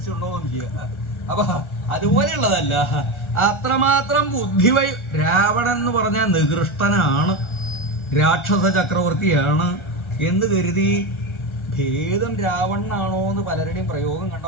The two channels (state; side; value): late; right; 1.4 ms